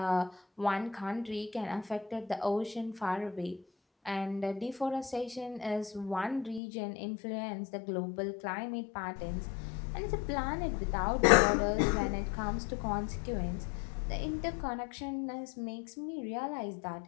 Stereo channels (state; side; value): drops out; right; at 6.6 s